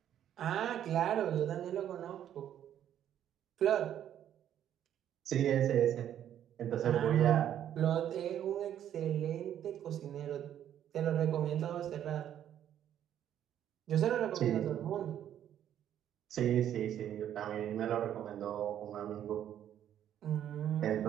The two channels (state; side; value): quieter; left; 10.5 dB